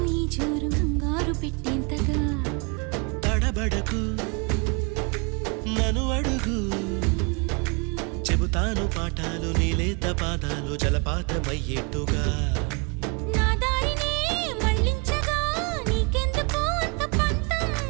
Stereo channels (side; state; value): left; quieter; 32.4 dB